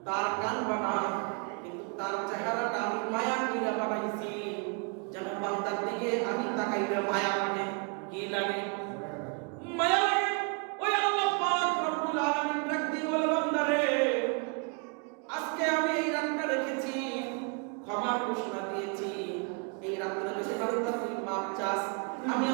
তার কান বানা কিন্তু তার চেহারাটা আমি মায়া কইরা বানাইছি যেন বান্দার দিকে আমি তাকাইলে মায়া লাগে কি লাগে মায়া লাগে ওই আল্লাহ পাক রব্বুল আলামিন ডাক দিয়ে বলে বান্দারে আজকে আমি এই রাতটা রেখেছি ক্ষমার ঘোষণা দিয়েছি এই রাতটা যদি বান্দা তুই মাপ চাস আমি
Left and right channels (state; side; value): quieter; left; 35.2 dB